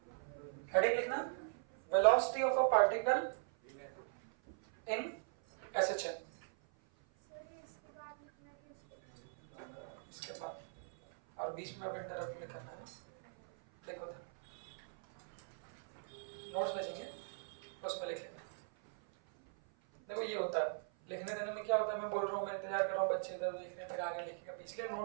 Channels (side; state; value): left; silent; 51 dB below the other